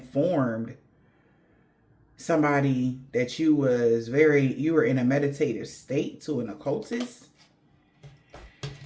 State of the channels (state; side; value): identical; both; correlation 1.00